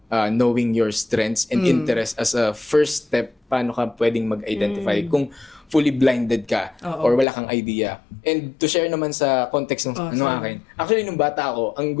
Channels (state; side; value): drops out; right; at 7.2 s